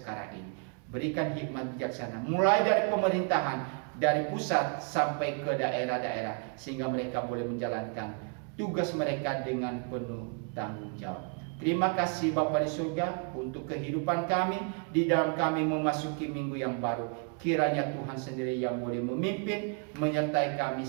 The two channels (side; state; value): left; quieter; 39.0 dB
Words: ini. Berikan hikmat bijaksana, mulai dari pemerintahan, dari pusat sampai ke daerah-daerah, sehingga mereka boleh menjalankan tugas mereka dengan penuh tanggung jawab. Terima kasih Bapa di surga untuk kehidupan kami di dalam kami memasuki minggu yang baru. Kiranya Tuhan sendiri yang boleh memimpin, menyertai kami